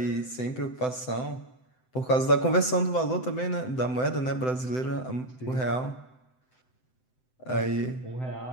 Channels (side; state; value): right; late; 7.8 ms